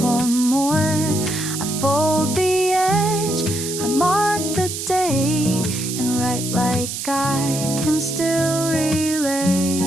more. I fold the edge, I mark the date, and write like I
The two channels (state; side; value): noise; right; hiss, 6 dB below the sound